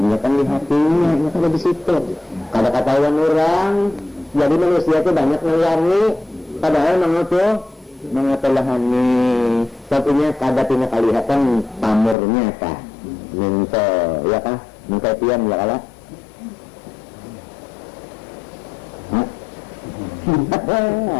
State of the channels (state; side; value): drops out; right; at 12.2 s